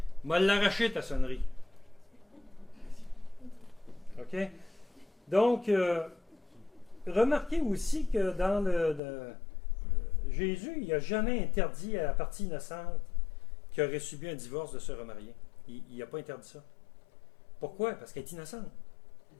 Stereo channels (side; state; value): right; drops out; at 9.0 s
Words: M'a l'arraché ta sonnerie. OK? Donc, remarquez aussi que dans Jésus, il n'a jamais interdit à la partie innocente qui aurait subi un divorce de se remarier. Il n'a pas interdit ça. Pourquoi? Parce qu'elle est innocente.